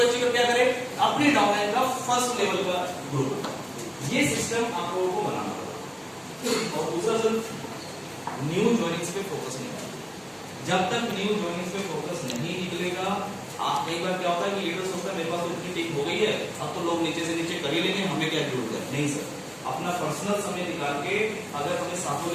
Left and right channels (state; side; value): identical; both; correlation 1.00